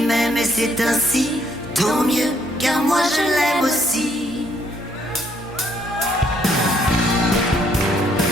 m'aime et c'est ainsi, tant mieux, car moi je l'aime aussi.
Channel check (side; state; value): both; normal; correlation 0.69